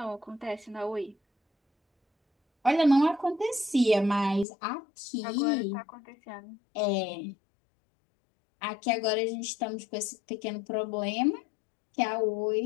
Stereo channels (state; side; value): drops out; right; at 4.5 s